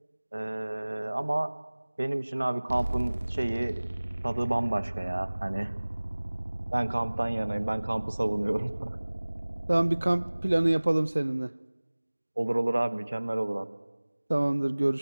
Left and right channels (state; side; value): inverted; both; correlation -1.00